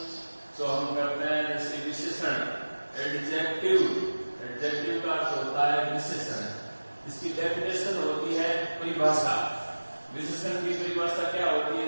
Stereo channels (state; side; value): inverted; both; correlation -1.00